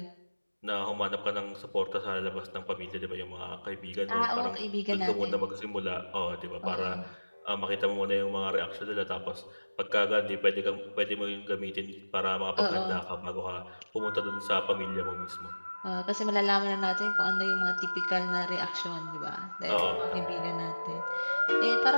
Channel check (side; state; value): both; inverted; correlation -1.00